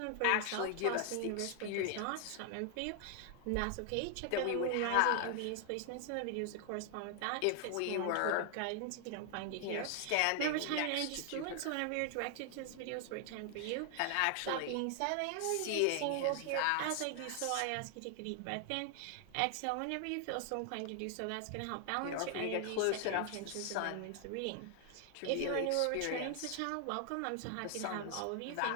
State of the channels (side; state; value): both; different; correlation 0.00